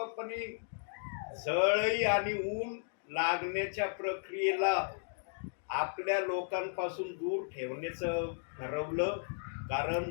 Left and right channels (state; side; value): silent; right; digital silence